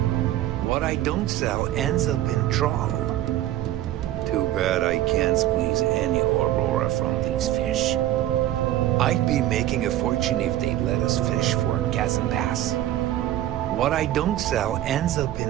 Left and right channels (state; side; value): quieter; left; 13.6 dB